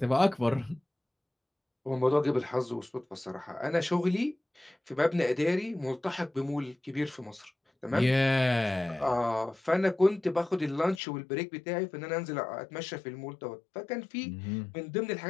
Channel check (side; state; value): right; drops out; at 11.0 s